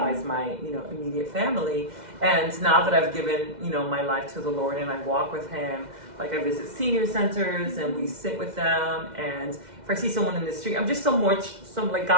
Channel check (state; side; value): late; left; 2.1 ms